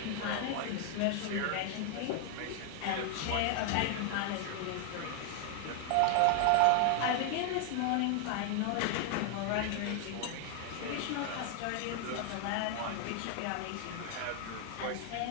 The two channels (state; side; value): different; both; correlation 0.00